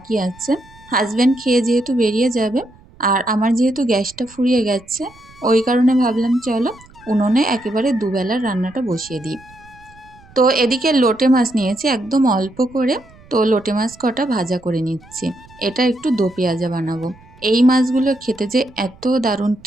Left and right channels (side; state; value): right; noise; rumble, 25 dB below the sound